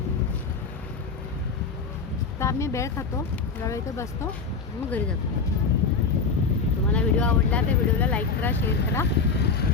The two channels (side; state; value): right; quieter; 4.9 dB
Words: तर आम्ही भेळ खातो, जरा इथे बसतो, मग घरी जातो. तुम्हाला व्हिडिओ आवडला तर व्हिडिओला लाईक करा, शेअर करा.